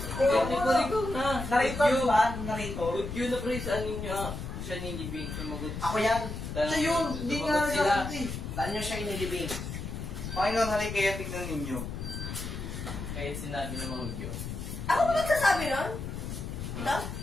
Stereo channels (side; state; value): left; noise; rumble, 7 dB below the sound